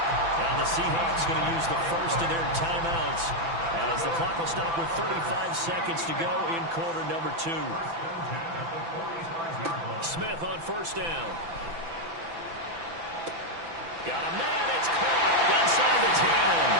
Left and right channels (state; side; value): late; left; 6.0 ms